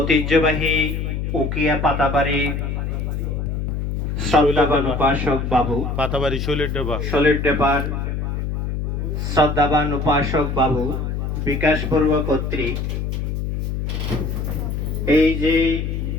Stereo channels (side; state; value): left; noise; hum, 2 dB below the sound